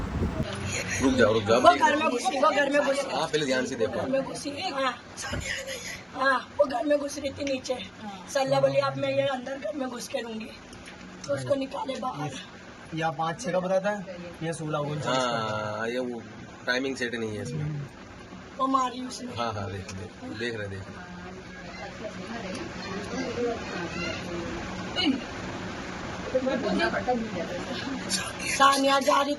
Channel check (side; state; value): both; identical; correlation 1.00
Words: रुक जाओ वो घर में घुसी, वो घर में घुसी, आप पहले ध्यान से देखो। घर में घुसी। हाँ वो घर में घुस रही थी नीचे। सल्ला बोली आप मैं ये अंदर घर में घुस के लूंगी, तो उसको निकाले बाहर। या 5-6 का बताता है, ये 16 हाँ ये वो टाइमिंग सेट नहीं है इसमें। वो मारी उसने। हाँ हाँ देख रहे। सानिया जा रही